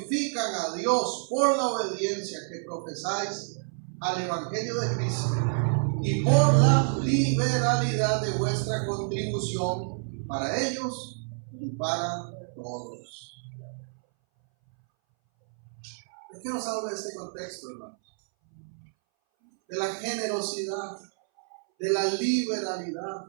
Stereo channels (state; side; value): silent; left; 59 dB below the other